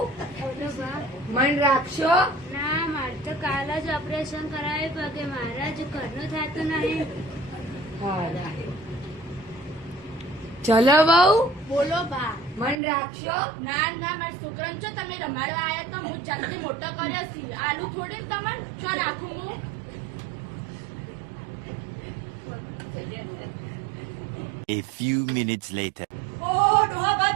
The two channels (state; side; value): drops out; left; at 12.8 s